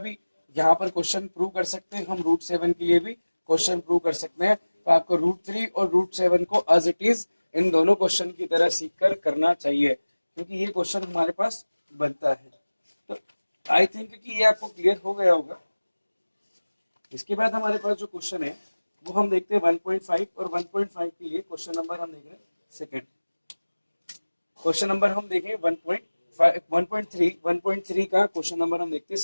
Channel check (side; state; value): both; inverted; correlation -1.00